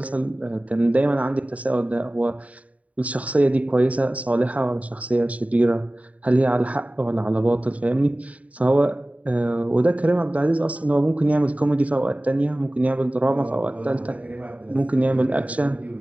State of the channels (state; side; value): late; left; 0.068 ms